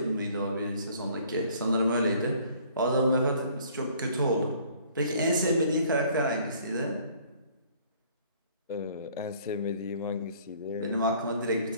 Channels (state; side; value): inverted; both; correlation -0.57